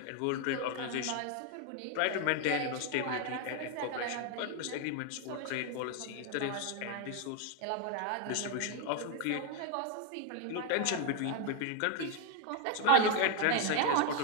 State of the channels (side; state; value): both; different; correlation 0.01